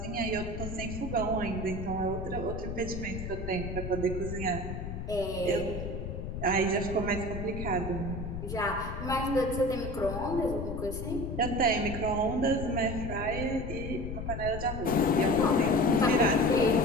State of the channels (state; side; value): noise; left; rumble, 6 dB below the sound